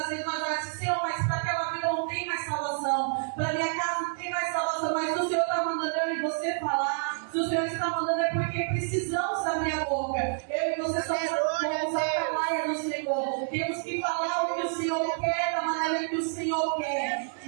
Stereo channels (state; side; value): silent; left; 55 dB below the other